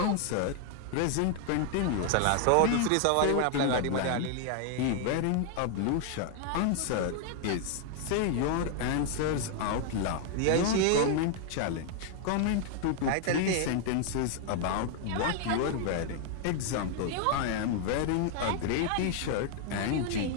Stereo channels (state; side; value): different; both; correlation 0.00